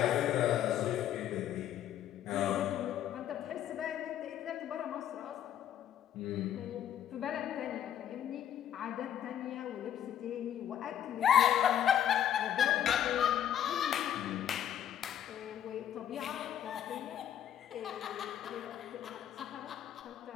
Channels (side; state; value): right; quieter; 10.5 dB